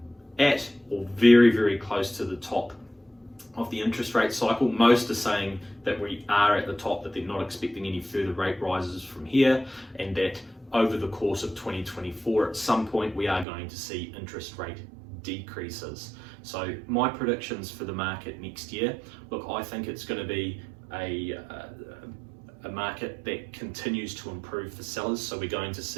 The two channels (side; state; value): left; drops out; at 13.5 s